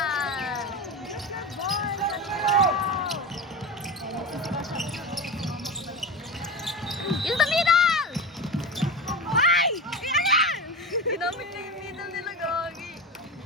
Use the middle! Ay! Ayan! Ginamit niya yung middle nila, gagi.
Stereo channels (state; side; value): normal; both; correlation 0.25